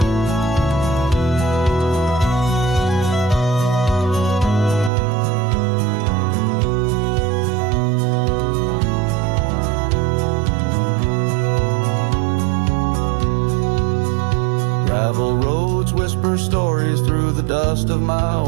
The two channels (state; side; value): drops out; left; at 4.9 s